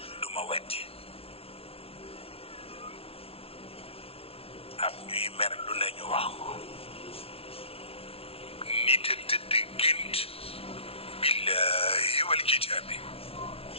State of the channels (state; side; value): late; right; 0.28 ms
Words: wetti am ñuy mer lu nañu wax ko nit a tëdd gént billahi wal kitaabi